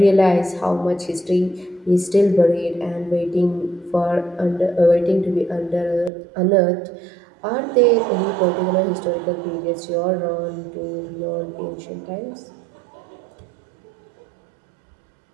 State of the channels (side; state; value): left; drops out; at 6.1 s